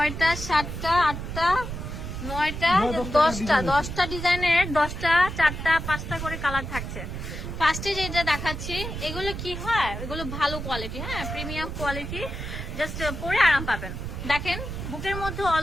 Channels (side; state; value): right; noise; rumble, 6 dB below the sound